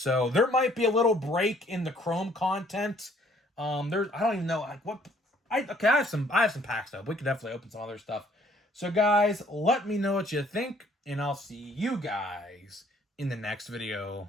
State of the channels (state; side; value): normal; both; correlation 0.61